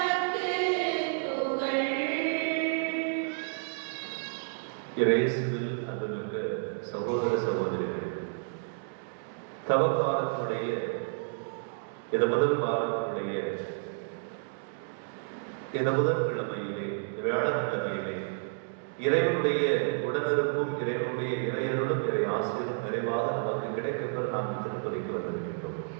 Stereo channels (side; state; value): left; silent; digital silence